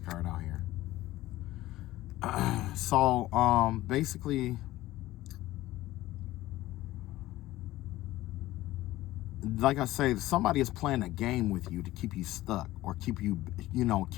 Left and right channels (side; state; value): right; quieter; 16.5 dB